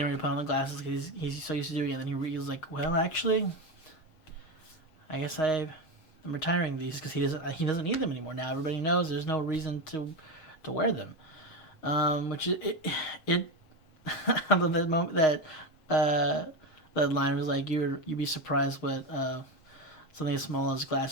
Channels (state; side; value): late; right; 6.4 ms